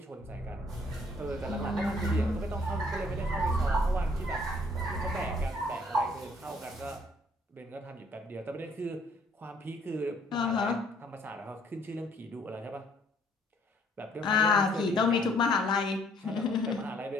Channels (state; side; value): normal; both; correlation 0.62